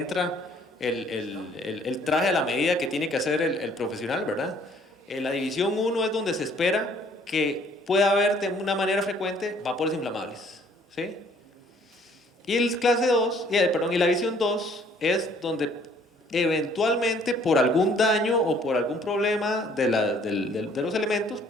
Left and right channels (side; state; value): both; normal; correlation 0.60